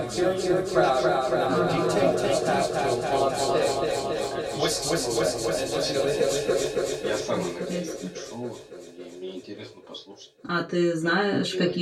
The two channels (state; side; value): identical; both; correlation 1.00